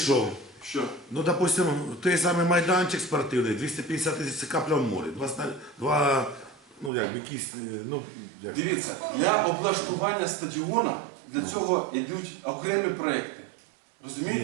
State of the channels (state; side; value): drops out; left; at 6.9 s